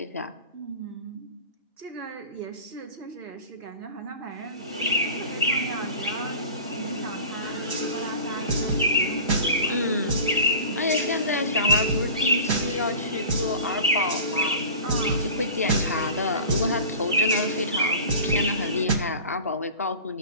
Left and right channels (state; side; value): inverted; both; correlation -0.38